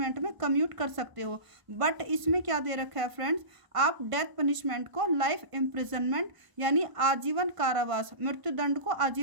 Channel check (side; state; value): left; late; 1.0 ms